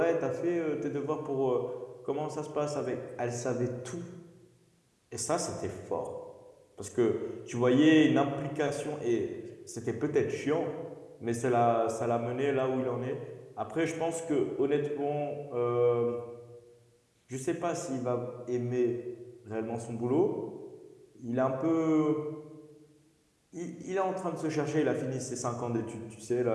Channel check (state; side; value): identical; both; correlation 1.00